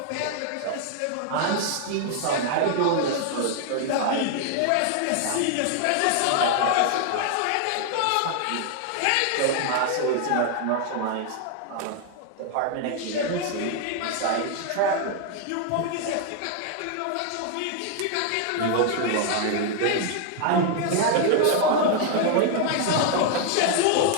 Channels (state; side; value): different; both; correlation 0.00